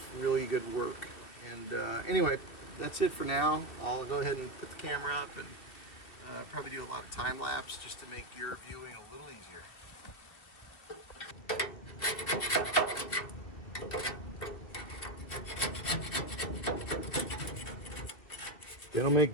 really good work. And anyway, that's it for now. I'll go ahead and put the camera up and probably do a lot of time lapse just to make your viewing a little easier. They don't make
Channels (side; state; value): right; late; 2.4 ms